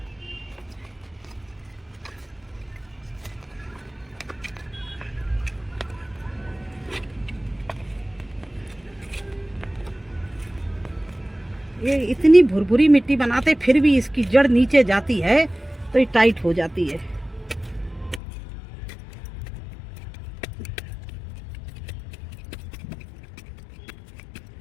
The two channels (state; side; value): drops out; right; at 18.2 s